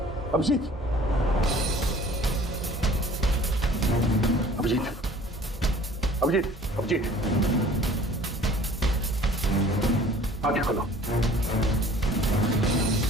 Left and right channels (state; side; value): normal; both; correlation 0.50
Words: अभिजीत, अभिजीत, अभिजीत, अभिजीत, आंखें खोलो,